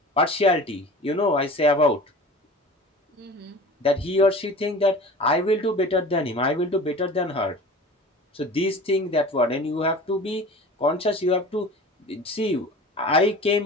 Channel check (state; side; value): normal; both; correlation 0.39